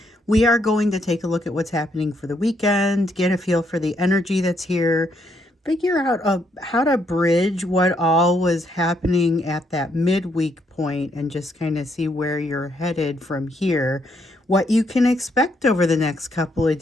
we are going to take a look at what's happening for the weekend, get a feel for the energy that's here, figure out how to bridge what all was happening at that midweek point, and just kind of see where you're headed from here, what you can expect over the next couple of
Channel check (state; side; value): normal; both; correlation 0.74